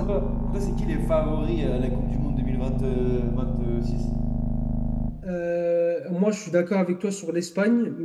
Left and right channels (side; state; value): both; identical; correlation 1.00